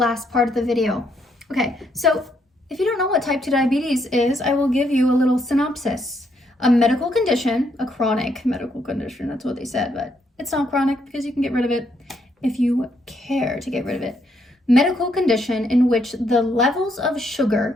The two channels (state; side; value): normal; both; correlation 0.74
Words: part of the video. Okay, so if you don't know what type 2 diabetes is, I will give you a little synopsis. A medical condition, a chronic medical condition, that's what they said, but it's not chronic because you can get rid of it if you care to get rid of it. Medical condition in which the levels of